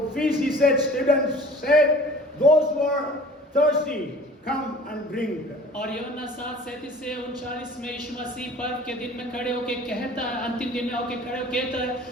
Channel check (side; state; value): both; normal; correlation 0.45